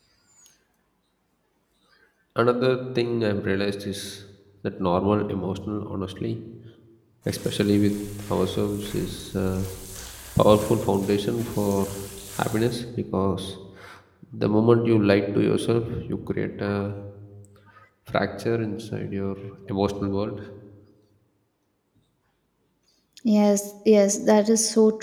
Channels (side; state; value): both; identical; correlation 1.00